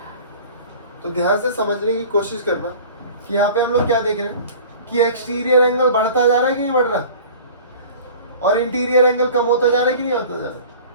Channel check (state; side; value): inverted; both; correlation -0.43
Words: तो ध्यान से समझने की कोशिश करना कि यहाँ पे हम लोग क्या देख रहे हैं कि एक्सटीरियर एंगल बढ़ता जा रहा है कि नहीं बढ़ रहा, और इंटीरियर एंगल कम होता जा रहा है कि नहीं होता जा रहा।